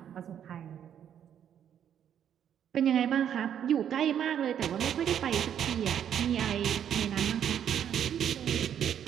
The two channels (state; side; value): quieter; left; 9.3 dB